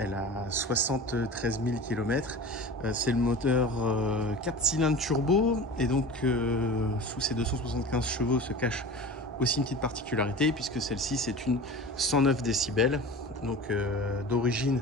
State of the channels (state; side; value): normal; both; correlation 0.35